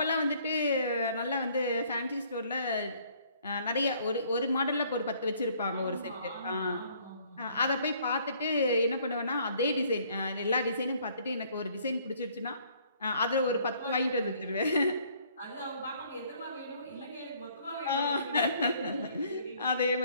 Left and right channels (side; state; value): both; inverted; correlation -0.62